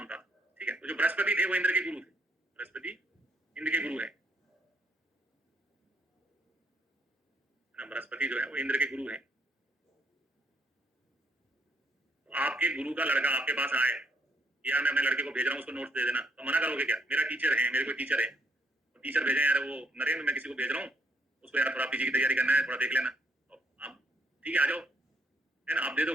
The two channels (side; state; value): both; normal; correlation 0.71